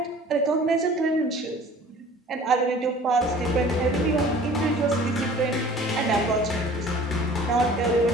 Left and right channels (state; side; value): normal; both; correlation 0.47